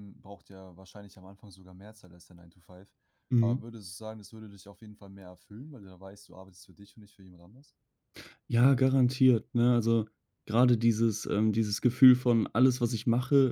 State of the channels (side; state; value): both; identical; correlation 1.00